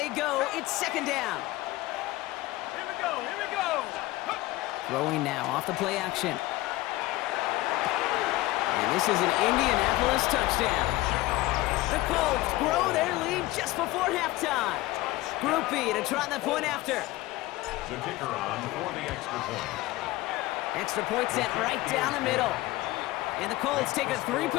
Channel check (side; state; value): right; quieter; 18.4 dB